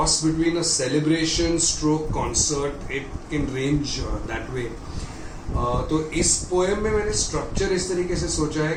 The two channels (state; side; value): identical; both; correlation 1.00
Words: between a celebration stroke concert. It can range that way. तो इस पोएम में मैंने स्ट्रक्चर इस तरीके से सोचा है